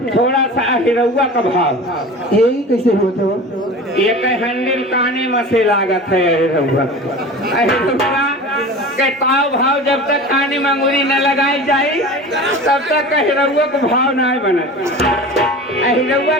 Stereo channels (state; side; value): normal; both; correlation 0.35